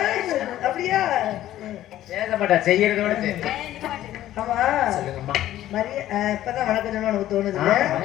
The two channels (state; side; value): quieter; right; 13.4 dB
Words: அப்படியா? பேச மாட்டா, செய்யறதோட சரி. ஆமா சொல்லுங்கம்மா. இப்பதான் வணக்கம் சொல்லணும் உனக்கு தோணுது.